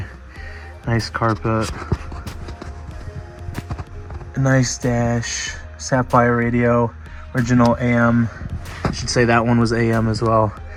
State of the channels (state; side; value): identical; both; correlation 1.00